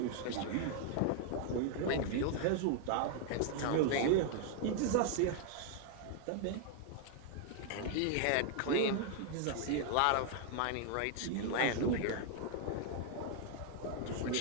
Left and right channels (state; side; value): different; both; correlation 0.00